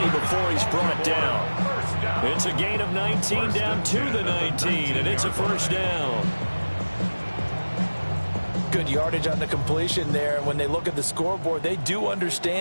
before he's brought down. It's a gain of 19 down to the 19, and it's a first down. Good yardage on the completion there. When they look at the scoreboard, they do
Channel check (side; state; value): both; inverted; correlation -1.00